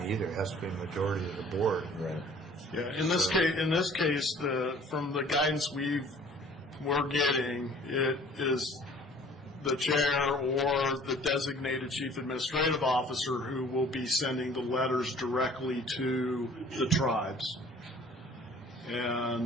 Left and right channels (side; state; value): both; normal; correlation 0.51